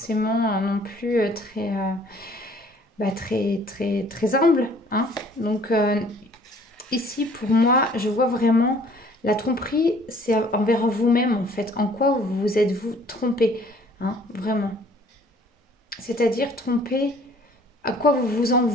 non plus très humble. Hein. Donc, ici, pour moi, je vois vraiment la tromperie, c'est envers vous-même, en fait. En quoi vous êtes-vous trompé, hein, vraiment. C'est-à-dire tromper, à quoi vous vous en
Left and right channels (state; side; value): normal; both; correlation 0.56